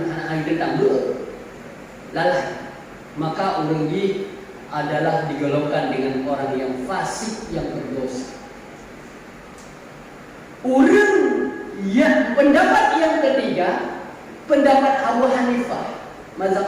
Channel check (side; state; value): both; identical; correlation 1.00